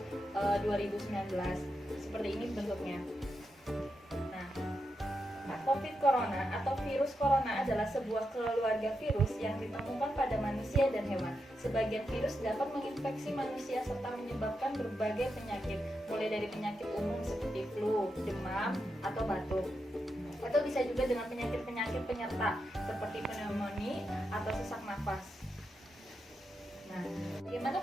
2019. Seperti ini bentuknya. COVID Corona atau virus corona adalah sebuah keluarga virus yang ditemukan pada manusia dan hewan. Sebagian virus dapat menginfeksi manusia serta menyebabkan berbagai penyakit, mulai dari penyakit umum seperti flu, demam, atau batuk. Atau bisa juga dengan penyakit-penyakit penyerta seperti pneumonia atau sesak nafas. Nah, bagaimana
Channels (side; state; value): both; normal; correlation 0.86